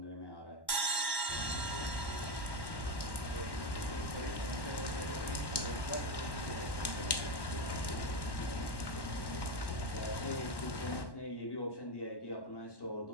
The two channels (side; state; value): right; late; 1.1 ms